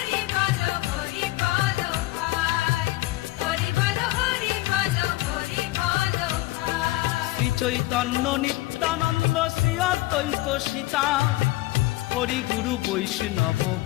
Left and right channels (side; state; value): right; quieter; 18.4 dB